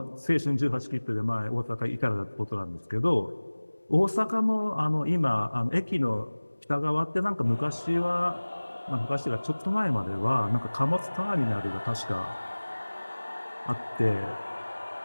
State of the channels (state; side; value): inverted; both; correlation -1.00